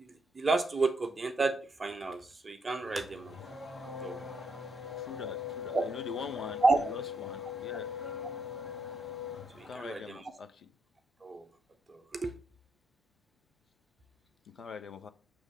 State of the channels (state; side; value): normal; both; correlation 0.79